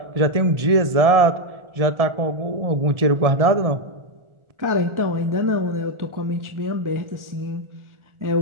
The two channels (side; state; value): left; late; 1.4 ms